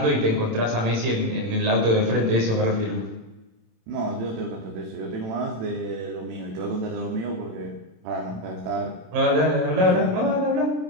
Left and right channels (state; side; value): late; left; 27 ms